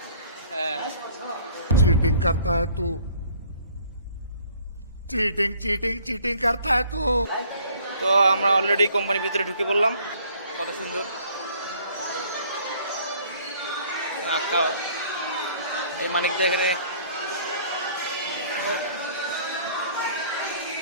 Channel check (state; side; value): inverted; both; correlation -0.57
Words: चीटिंग करता है तू, चीटिंग चीटिंग चीटिंग करता है तू। তো আমরা অলরেডি কোম্পানির ভিতরে ঢুকে পড়লাম। কত সুন্দর আঁকা এই মানিকদা এখানে